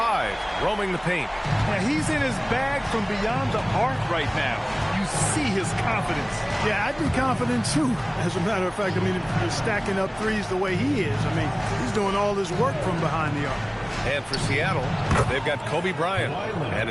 roaming the paint. Yeah, he's in his bag from beyond the arc right now. You see his confidence. Yeah, I'd be confident too. As a matter of fact, I mean, if he's stacking up threes the way he is, I mean, he's doing all his work from behind the arc. And for Seattle, they've got Kobe Bryant, and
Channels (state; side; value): identical; both; correlation 1.00